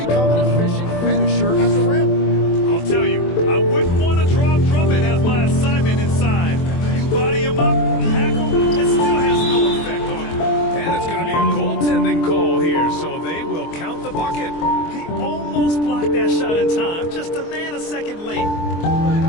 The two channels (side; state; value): right; late; 24 ms